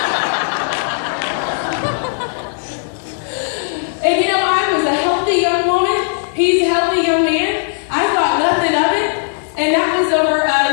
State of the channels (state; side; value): silent; right; digital silence